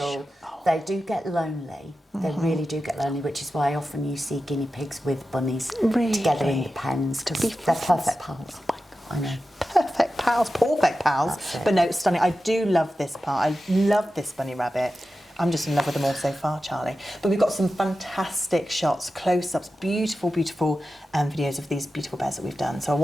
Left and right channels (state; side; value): normal; both; correlation 0.92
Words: Oh. They do get lonely. They really do get lonely, which is why often you see guinea pigs with bunnies together in the Really? pens because be they're friends. perfect pals. Oh my I know. Perfect pals, perfect pals. That's it. But no, it's stunning. I do love this part. I love this bunny rabbit. I'm just in love with them all so far, Charlie. But we've got some fantastic shots, close-ups, beautiful, beautiful videos of these beautiful bears that we've done. So I